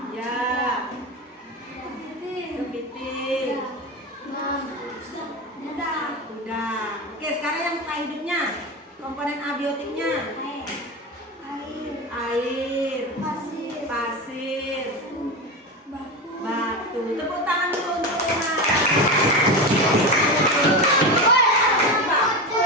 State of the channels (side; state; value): both; normal; correlation 0.21